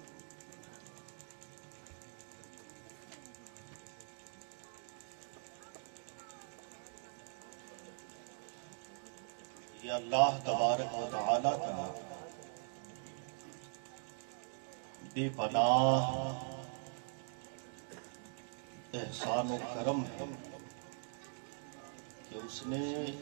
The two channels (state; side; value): silent; left; digital silence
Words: یہ اللہ تبارک و تعالی کا بے پناہ احسان و کرم ہے کہ اس نے